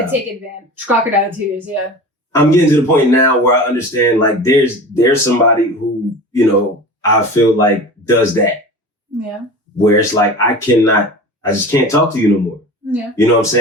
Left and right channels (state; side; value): normal; both; correlation 0.35